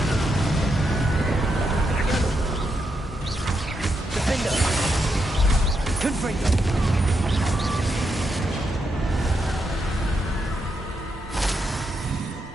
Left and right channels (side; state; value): both; normal; correlation 0.82